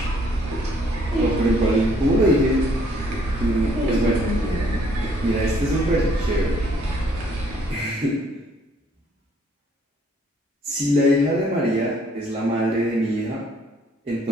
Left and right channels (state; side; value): normal; both; correlation 0.64